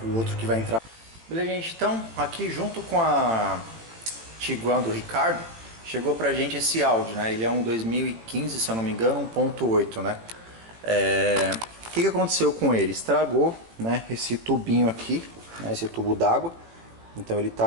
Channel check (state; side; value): late; left; 18 ms